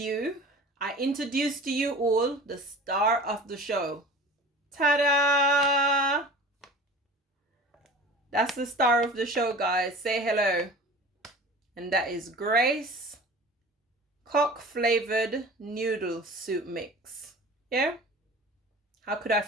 I introduce to you all the star of the show. Ta-da! That's the star of the show, guys. Say hello. And that is Grace cock flavored noodle soup mix. Yeah? How could I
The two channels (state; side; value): normal; both; correlation 0.39